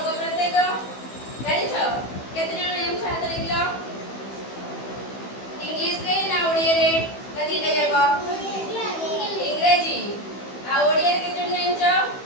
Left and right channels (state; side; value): late; right; 15 ms